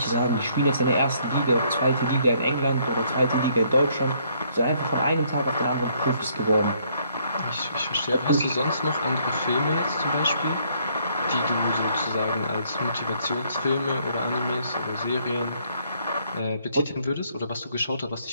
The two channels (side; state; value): both; inverted; correlation -0.67